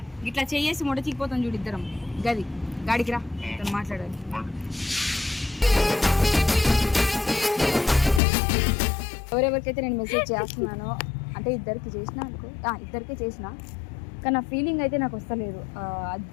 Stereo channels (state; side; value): drops out; right; at 8.2 s